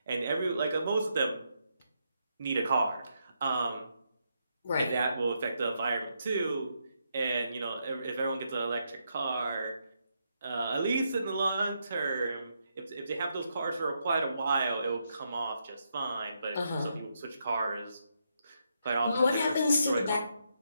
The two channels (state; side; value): inverted; both; correlation -0.79